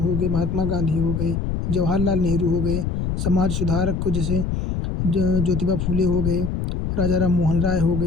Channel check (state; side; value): noise; left; rumble, 2 dB below the sound